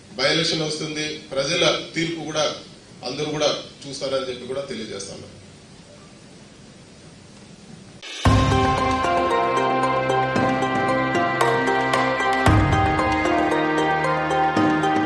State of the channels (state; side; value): identical; both; correlation 1.00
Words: బై ఎలక్షన్ వస్తుంది, ప్రజల తీర్పు కూడా అందరూ కూడా చూస్తారని చెప్పి కూడా తెలియజేస్తాను.